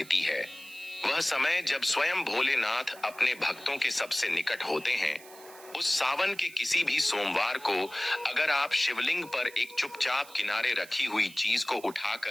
है, वह समय जब स्वयं भोलेनाथ अपने भक्तों के सबसे निकट होते हैं। उस सावन के किसी भी सोमवार को अगर आप शिवलिंग पर एक चुपचाप किनारे रखी हुई चीज को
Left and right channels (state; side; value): noise; right; hiss, 20 dB below the sound